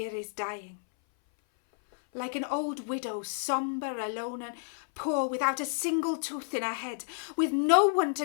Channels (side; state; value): right; silent; 57 dB below the other